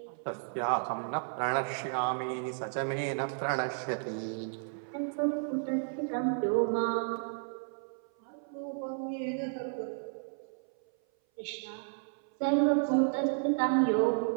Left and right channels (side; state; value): left; silent; 56 dB below the other